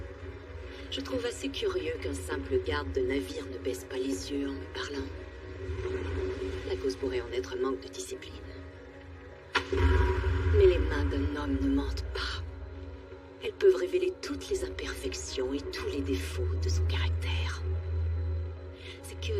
Je trouve assez curieux qu'un simple garde de navire ne baisse pas les yeux en me parlant. La cause pourrait en être un manque de discipline. Mais les mains d'un homme ne mentent pas. Elles peuvent révéler toutes les imperfections et tous les défauts de son caractère. C'est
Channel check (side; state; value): both; identical; correlation 1.00